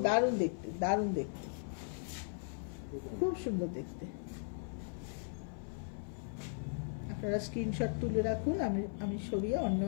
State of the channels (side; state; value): right; silent; 53 dB below the other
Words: দারুণ দেখতে, দারুণ দেখতে, খুব সুন্দর দেখতে। আপনারা স্ক্রিনশট তুলে রাখুন, আমি সরিয়ে অন্য